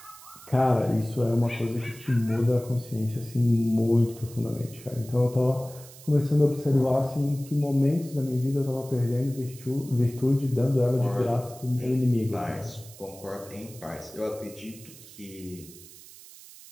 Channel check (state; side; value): noise; right; hiss, 19 dB below the sound